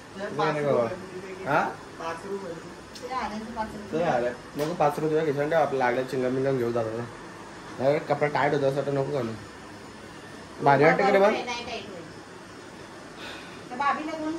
हा नको 5 रुपये घेऊन द्या. आपल्याला लागल्या चिंगम बिंगम घेऊ जातो. कपडा टाईट होता असं नको घालू. भारी वाटतं का रे बा? भाभीला 2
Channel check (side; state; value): both; identical; correlation 1.00